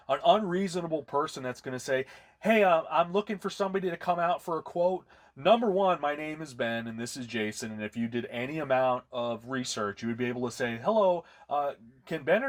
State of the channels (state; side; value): identical; both; correlation 1.00